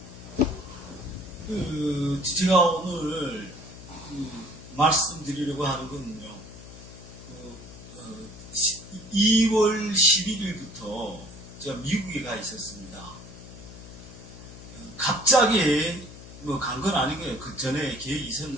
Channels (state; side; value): noise; left; hum, 16 dB below the sound